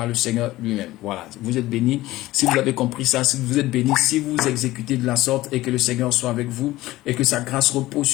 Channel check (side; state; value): right; quieter; 17.2 dB